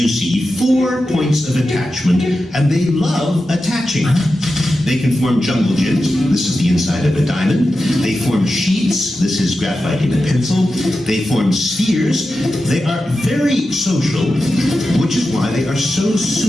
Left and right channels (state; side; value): normal; both; correlation 0.91